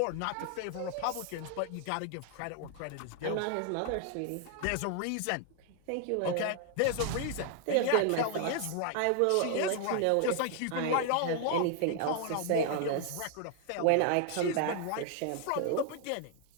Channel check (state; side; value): different; both; correlation 0.00